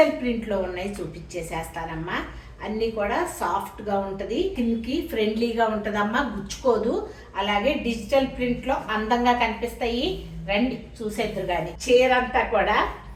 ప్రింట్లో ఉన్నాయి, చూపించేసేస్తానమ్మా. అన్నీ కూడా సాఫ్ట్గా ఉంటుంది, కిందకి ఫ్రెండ్లీగా ఉంటుందమ్మా, గుచ్చుకోదు. అలాగే డిజిటల్ ప్రింట్లో అందంగా కనిపిస్తాయి. రండి చూసేద్దరు. కానీ చీర అంతా కూడా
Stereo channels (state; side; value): identical; both; correlation 1.00